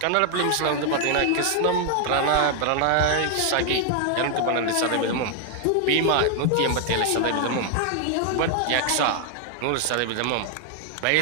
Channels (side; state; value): both; different; correlation 0.00